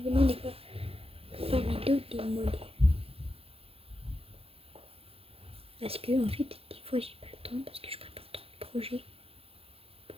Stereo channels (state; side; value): late; left; 0.28 ms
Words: des fois pour faire vidéo des modèles. Parce que en fait, des fois j'ai pas le temps parce que je prépare trop de projets